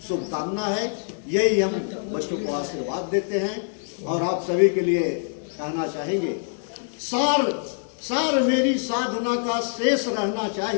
शुभकामना है, यही हम बच्चों को आशीर्वाद देते हैं। और आप सभी के लिए कहना चाहेंगे, सार मेरी साधना का शेष रहना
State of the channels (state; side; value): silent; right; digital silence